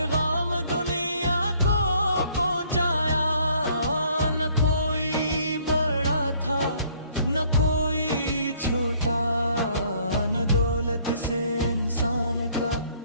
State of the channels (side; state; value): both; inverted; correlation -0.61